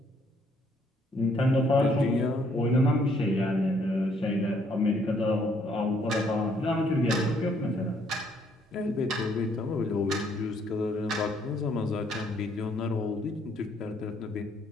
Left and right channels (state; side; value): normal; both; correlation 0.67